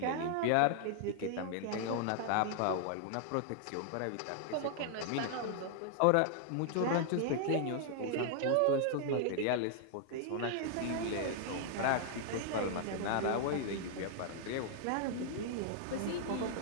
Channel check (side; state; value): both; different; correlation -0.01